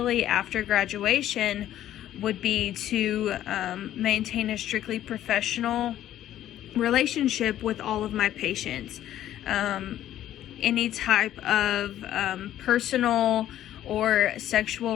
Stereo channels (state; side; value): quieter; right; 12.3 dB